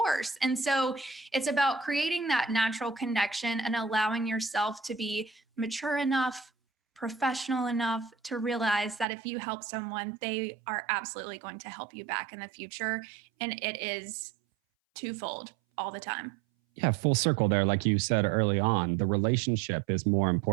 And so it's about creating that natural connection and allowing yourself to be mature enough, professional enough to realize that if you help someone, they are absolutely going to help you back in the future. And it is twofold all the time. Yeah, full circle there. Like you said early on, the relationship is more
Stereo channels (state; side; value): drops out; left; at 9.1 s